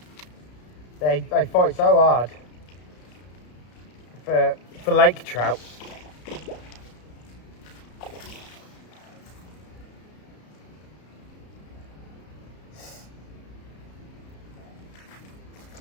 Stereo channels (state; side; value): late; right; 33 ms